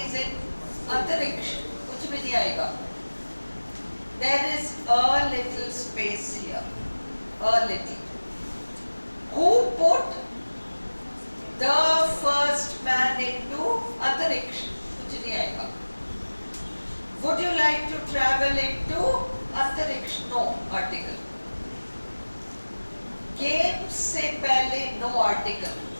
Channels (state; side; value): inverted; both; correlation -1.00